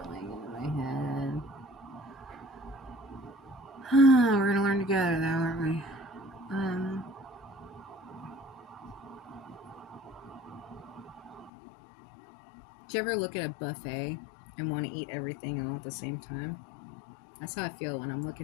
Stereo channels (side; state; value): right; drops out; at 11.5 s